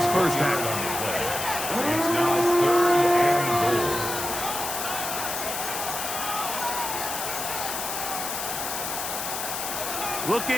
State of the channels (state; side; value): noise; left; hiss, 4 dB below the sound